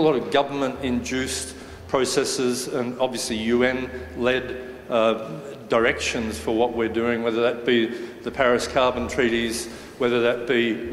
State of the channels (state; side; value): identical; both; correlation 1.00